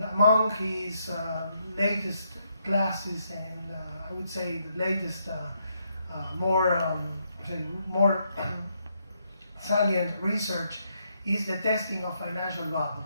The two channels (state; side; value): inverted; both; correlation -0.77